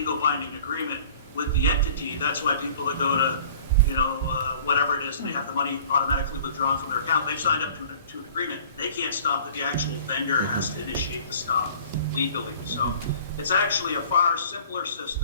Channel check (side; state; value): both; inverted; correlation -0.48